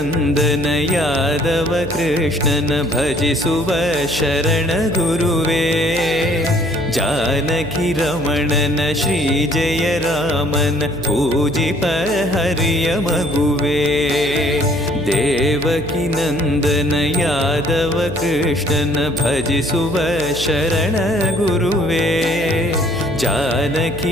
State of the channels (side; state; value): right; noise; hum, 11 dB below the sound